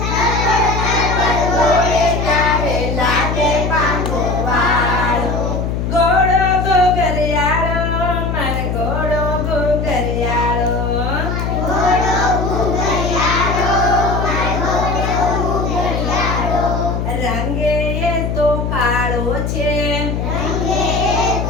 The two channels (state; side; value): noise; left; hum, 1 dB below the sound